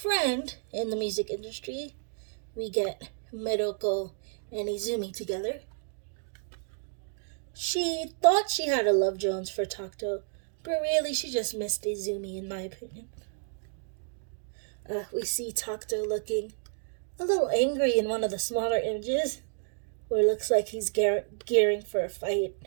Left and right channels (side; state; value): left; silent; digital silence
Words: in the music industry. We get Maroko and Izumi together. She thought she had a love Jones for Takuto, but really she just missed Izumi, in my opinion. We see Takuto looking a little angry in one of the smaller images, where it looks like he's gearing for a fight,